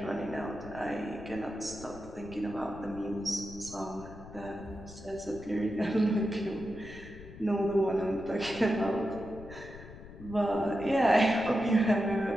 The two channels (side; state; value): left; noise; rumble, 16 dB below the sound